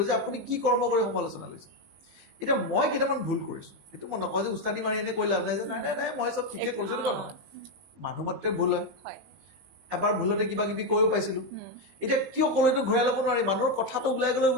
যে আপুনি কি কৰ্ম কৰি সমালোচনা লৈছে এতিয়া মই কেইটামান ভুল কৰিছো সেইটো মই নকওঁ যে উস্তাদি মাৰি এনে কৈ লাভ নাই যে নাই মই চব ঠিকে কৰিছো এনেকুৱা নহয় মানুহ মাত্ৰে ভুল হয় এবাৰ ভুলতে কিবা কিবি কৈও পাইছিলো এতিয়া কিয় ক'লেতো ঘূৰাই ল'ব নোৱাৰি মানুহৰ কথাটো ওলাই গ'লে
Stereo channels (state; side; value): late; left; 19 ms